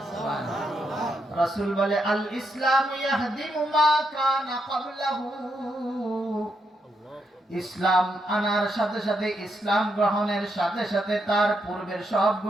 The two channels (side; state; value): both; normal; correlation 0.80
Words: সুবহানাল্লাহ। রাসূল বলে, আল ইসলাম ইয়াহদিমু মা কানা ক্বাবলাহু, ইসলাম আনার সাথে সাথে, ইসলাম গ্রহণের সাথে সাথে তার পূর্বের সব